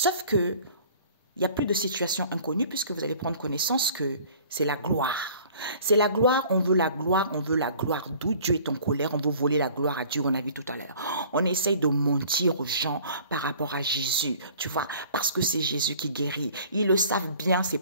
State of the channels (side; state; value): both; inverted; correlation -0.50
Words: que, il n'y a plus de situation inconnue puisque vous allez prendre connaissance que c'est la gloire. C'est la gloire, on veut la gloire, on veut la gloire. D'où Dieu est en colère, on veut voler la gloire à Dieu, on a vu tout à l'heure. On essaye de mentir aux gens par rapport à Jésus, tu vois, parce que c'est Jésus qui guérit. Ils le savent bien, ces